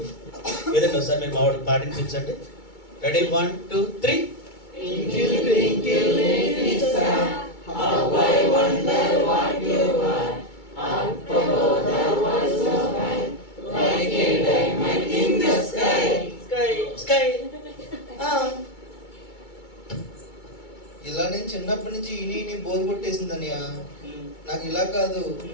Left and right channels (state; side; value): late; right; 2.2 ms